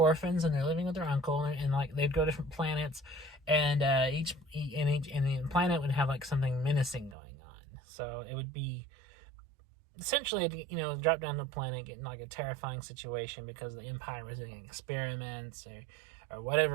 and they're living with their uncle, and like they'd go to different planets, and each planet would have like something menacing going on. So it would be essentially, you know, drop down to the planet, get in like a terrifying situation because the Empire was doing experiments or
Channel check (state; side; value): drops out; left; at 7.2 s